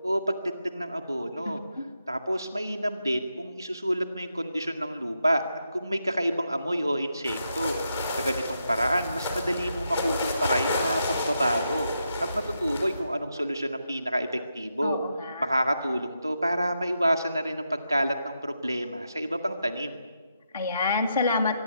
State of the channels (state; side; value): inverted; both; correlation -0.83